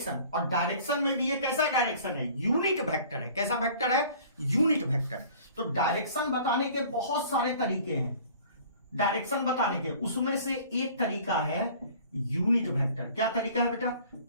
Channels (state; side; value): inverted; both; correlation -0.49